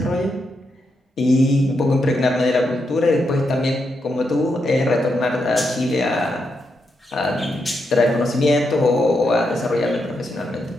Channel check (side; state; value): both; normal; correlation 0.83